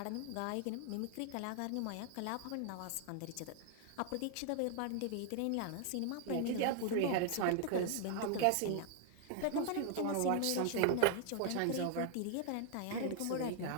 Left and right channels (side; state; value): both; different; correlation 0.00